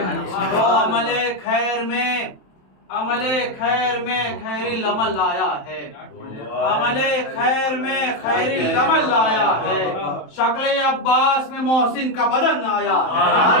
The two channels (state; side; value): late; right; 27 ms